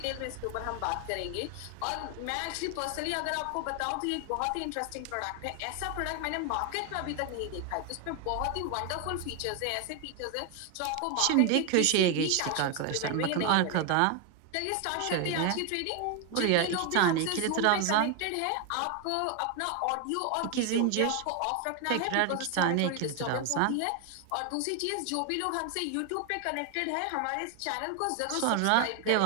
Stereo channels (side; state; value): both; different; correlation 0.01